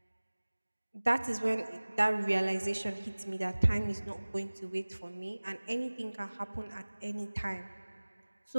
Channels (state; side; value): inverted; both; correlation -1.00